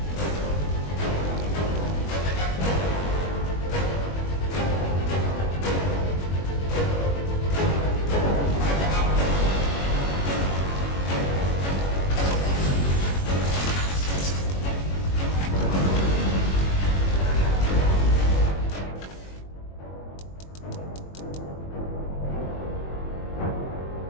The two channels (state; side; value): late; right; 21 ms